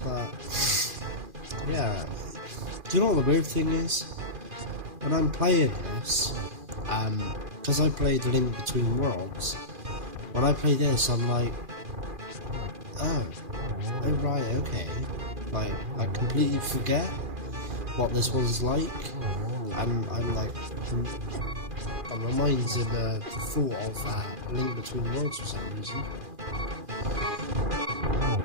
yeah. Do you know what the weird thing is? When I'm playing this, because I played Link Between Worlds, when I play this, I'm like, oh right, okay. Like, I completely forget what this was like, and I'm like, my mind's in the thought of Link Between Worlds for some reason.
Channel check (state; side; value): late; left; 2.4 ms